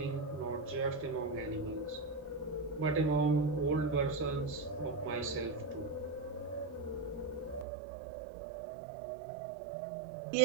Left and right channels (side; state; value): left; drops out; at 7.7 s